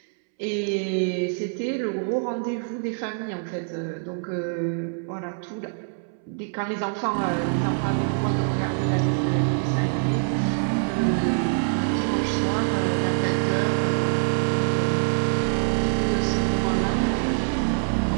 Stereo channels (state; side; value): silent; left; 62 dB below the other